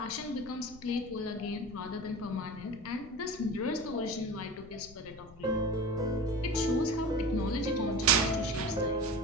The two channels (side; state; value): left; noise; rumble, 20 dB below the sound